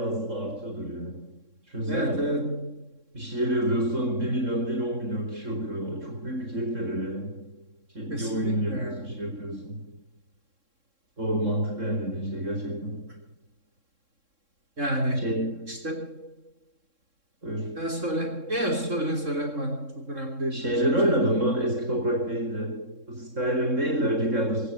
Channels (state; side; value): late; left; 3.7 ms